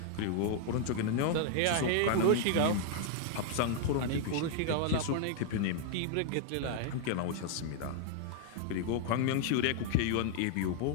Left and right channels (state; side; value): different; both; correlation 0.00